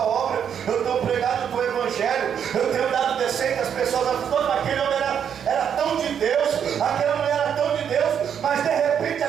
obra, eu tenho pregado o teu evangelho, eu tenho dado descendo às pessoas, aquele homem era tão de Deus, aquela mulher era tão de Deus, mas de repente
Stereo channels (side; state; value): left; quieter; 8.2 dB